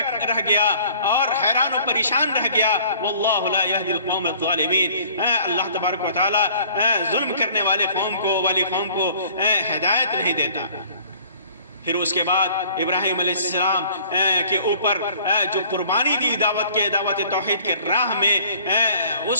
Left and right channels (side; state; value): both; inverted; correlation -0.52